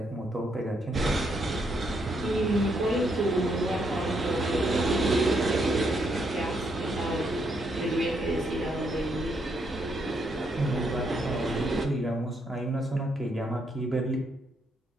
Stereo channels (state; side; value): normal; both; correlation 0.75